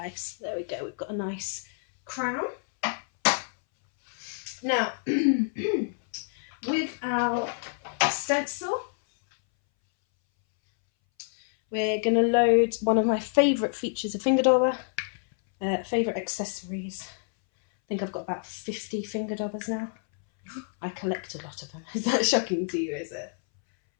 There we go, we've got a nice crown. Now, with our stencil, we're going to load one of my favourite features of finger dauber, favourite accessories. I think I've got about 50 finger daubers now. I collect a lot of them. Is that shocking to you, is it?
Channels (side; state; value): right; silent; 59 dB below the other